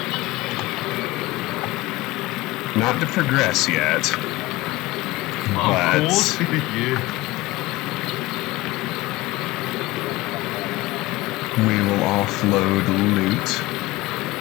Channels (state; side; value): quieter; right; 19.5 dB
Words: Not to progress yet. But Of course. Yeah. we will offload loot.